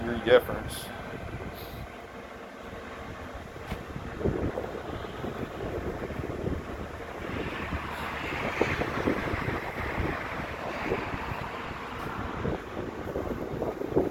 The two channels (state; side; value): identical; both; correlation 1.00